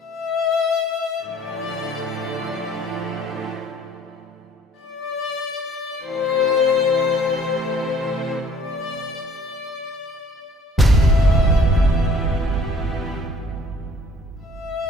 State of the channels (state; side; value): normal; both; correlation 0.55